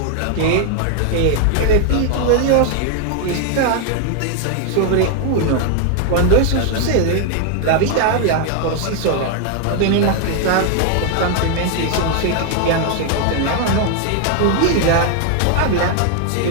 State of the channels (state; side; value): different; both; correlation 0.00